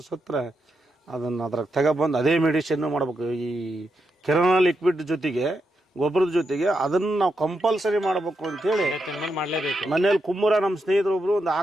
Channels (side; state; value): both; normal; correlation 0.84